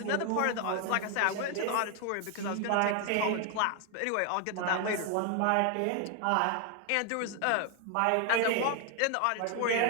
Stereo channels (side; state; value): both; different; correlation 0.01